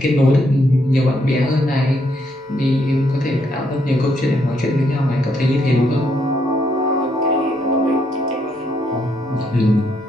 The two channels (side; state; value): both; normal; correlation 0.74